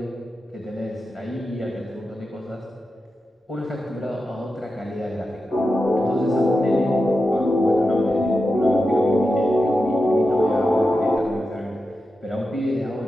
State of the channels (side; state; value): both; normal; correlation 0.90